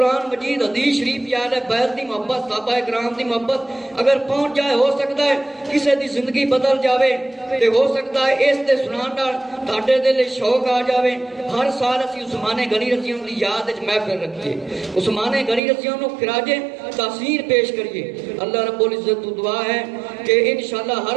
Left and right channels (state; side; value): drops out; left; at 15.6 s